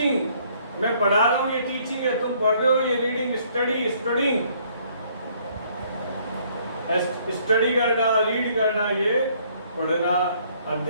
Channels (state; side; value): inverted; both; correlation -0.63